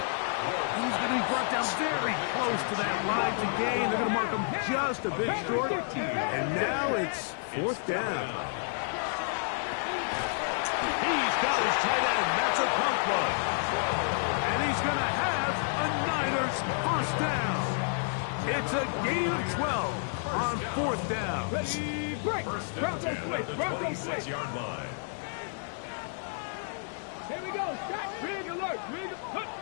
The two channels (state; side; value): silent; right; digital silence